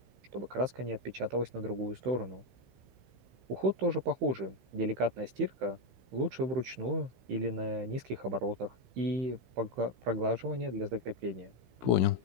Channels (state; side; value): late; left; 15 ms